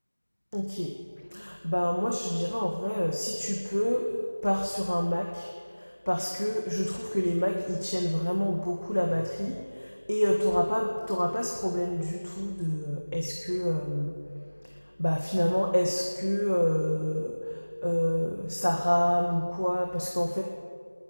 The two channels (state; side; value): inverted; both; correlation -1.00